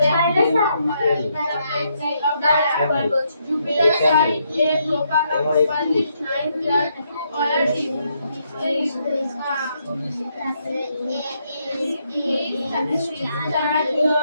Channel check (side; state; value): both; inverted; correlation -0.76